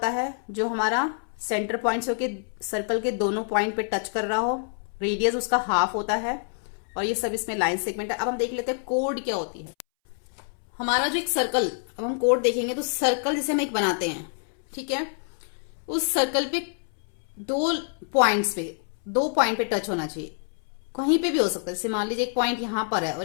है, जो हमारा सेंटर पॉइंट से होके सर्कल के दोनों पॉइंट पे टच कर रहा हो। रेडियस उसका हाफ होता है, और ये सब इसमें लाइन सेगमेंट है। अब हम देख लेते हैं कोड क्या होती है। हमारा जो एक सर्कल, अब हम कोड देखेंगे तो सर्कल जैसे हम एक बनाते हैं, ठीक है, उस सर्कल पे दो पॉइंट पे टच होना चाहिए। कहीं पे भी हो सकता है, जैसे मान लीजिए एक पॉइंट यहां पर है और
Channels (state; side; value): silent; right; 61 dB below the other